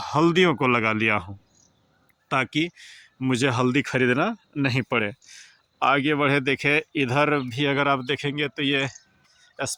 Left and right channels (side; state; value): both; identical; correlation 1.00